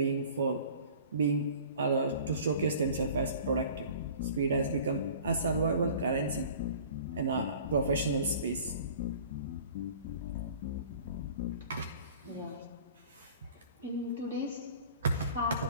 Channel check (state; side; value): inverted; both; correlation -0.45